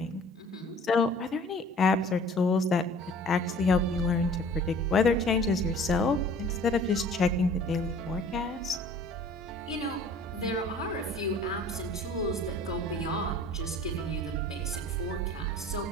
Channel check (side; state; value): both; normal; correlation 0.48